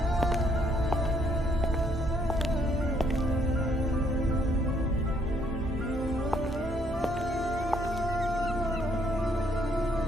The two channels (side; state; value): both; normal; correlation 0.68